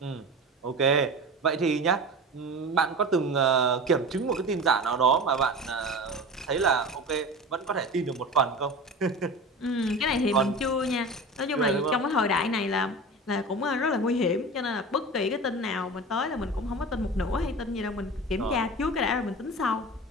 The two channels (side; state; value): both; normal; correlation 0.32